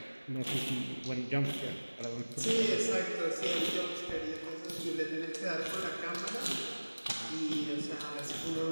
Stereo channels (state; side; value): inverted; both; correlation -1.00